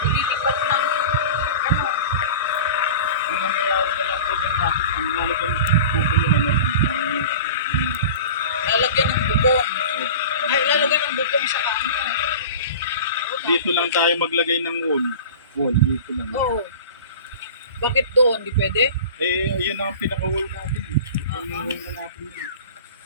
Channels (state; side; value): inverted; both; correlation -0.36